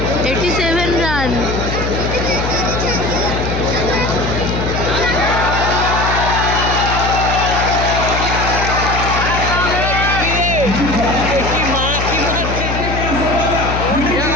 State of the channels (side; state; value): left; noise; hum, 3 dB below the sound